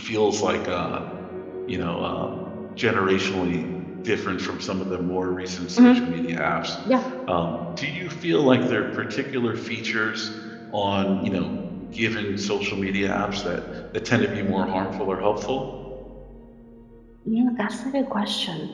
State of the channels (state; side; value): identical; both; correlation 1.00